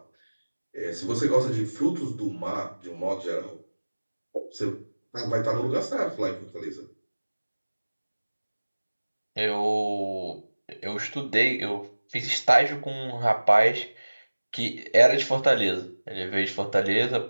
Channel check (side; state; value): both; inverted; correlation -1.00